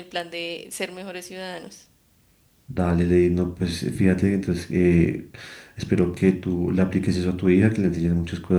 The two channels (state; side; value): identical; both; correlation 1.00